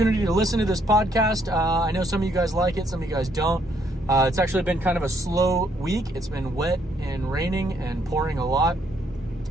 to listen to this podcast. I know some of you guys like it, some of you guys don't. It's actually been kind of a slow week. It's been wet and raining and pouring a lot,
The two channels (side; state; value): both; normal; correlation 0.70